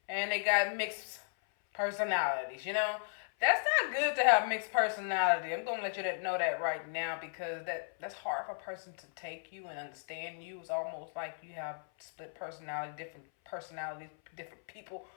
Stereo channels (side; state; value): right; silent; 54 dB below the other